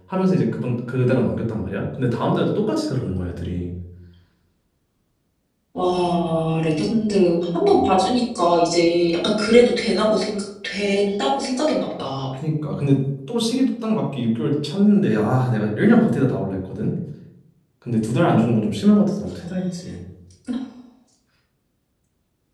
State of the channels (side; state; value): both; identical; correlation 1.00